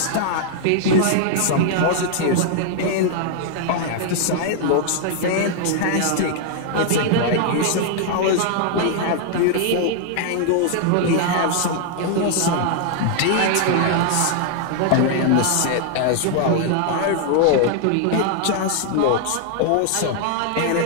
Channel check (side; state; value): both; different; correlation 0.00